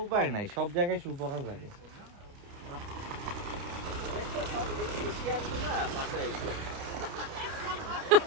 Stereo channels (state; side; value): late; left; 29 ms